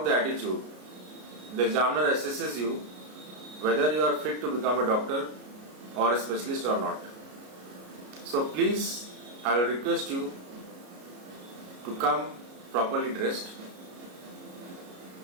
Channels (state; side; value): late; left; 33 ms